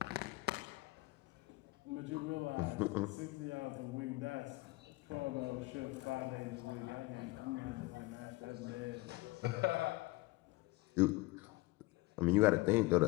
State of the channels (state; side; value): quieter; right; 21.5 dB